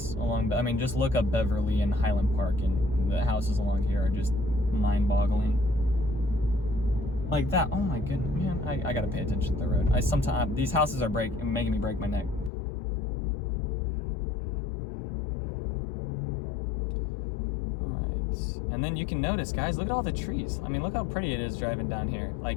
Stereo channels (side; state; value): right; drops out; at 12.5 s